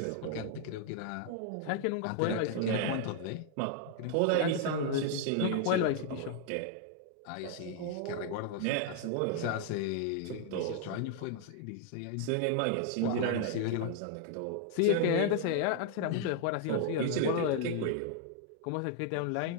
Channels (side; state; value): both; different; correlation 0.00